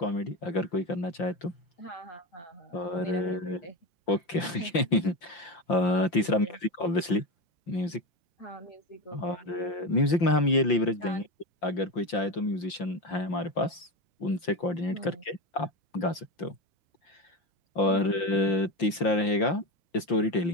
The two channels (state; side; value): late; right; 5.8 ms